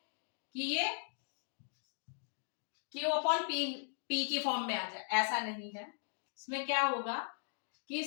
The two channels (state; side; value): silent; right; 52 dB below the other